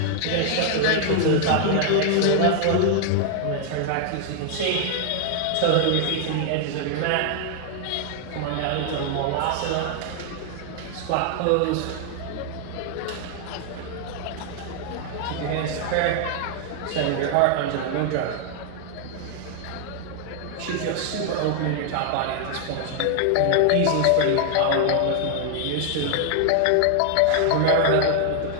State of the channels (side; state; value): both; different; correlation 0.00